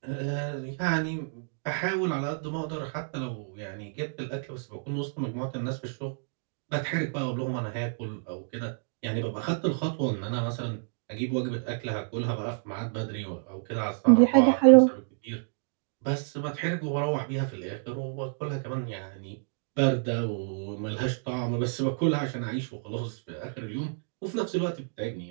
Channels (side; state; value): left; silent; digital silence